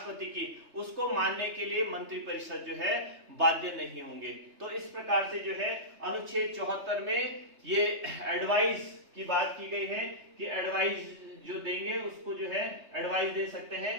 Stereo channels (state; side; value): late; left; 3.3 ms